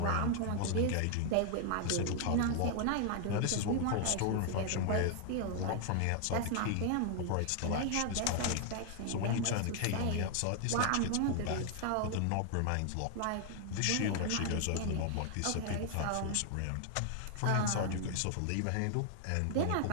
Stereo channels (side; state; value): both; different; correlation 0.00